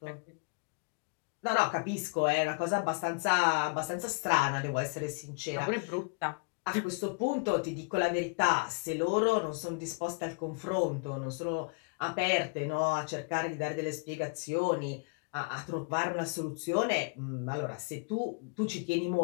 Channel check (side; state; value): right; quieter; 33.6 dB